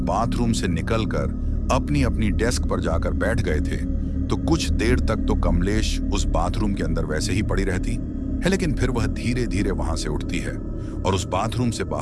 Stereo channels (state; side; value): identical; both; correlation 1.00